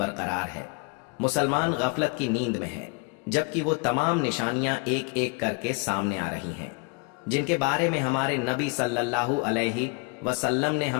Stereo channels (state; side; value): quieter; right; 32.2 dB